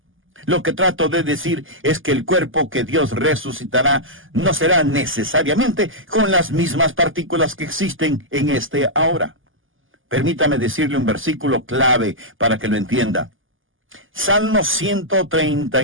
Lo que trato de decir es que el cuerpo que Dios resucitará no será necesariamente con las mismas partículas que existen en este ahora. Permítame decirle un versículo clave para que lo entienda. Salmo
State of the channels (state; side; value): late; left; 0.58 ms